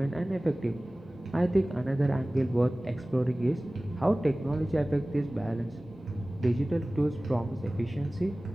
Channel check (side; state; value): both; normal; correlation 0.98